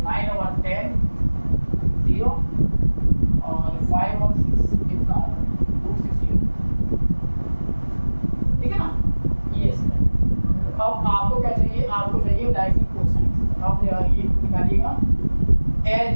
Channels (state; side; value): inverted; both; correlation -1.00